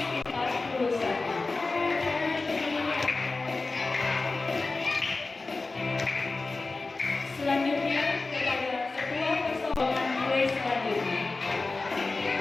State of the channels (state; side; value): quieter; right; 3.6 dB